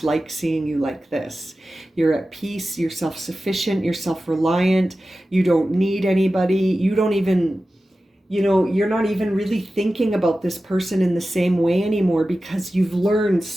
like seeing you like this. You're at peace, you're self-sufficient, you're self-reliant, you don't need anybody, you don't even... you're not even really thinking about this person in the same way anymore because you've learned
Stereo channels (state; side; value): normal; both; correlation 0.94